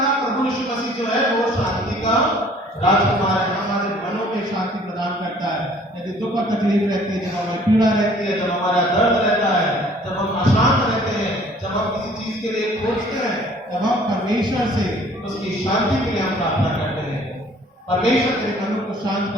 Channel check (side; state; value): both; normal; correlation 0.55